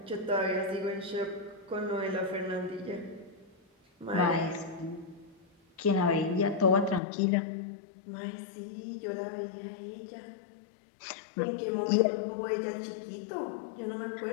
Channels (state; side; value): drops out; right; at 7.0 s